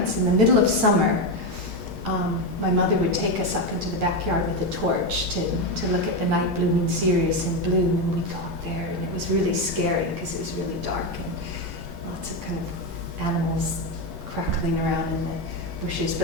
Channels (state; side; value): noise; left; rumble, 17 dB below the sound